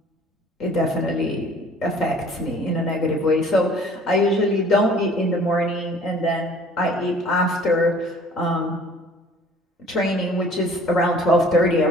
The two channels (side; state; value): both; normal; correlation 0.52